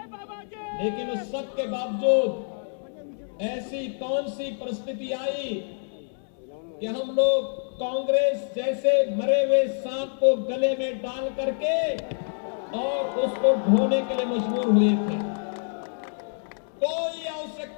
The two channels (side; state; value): right; silent; digital silence